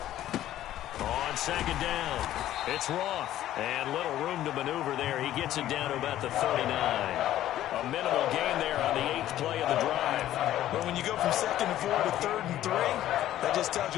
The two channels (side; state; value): right; quieter; 13.0 dB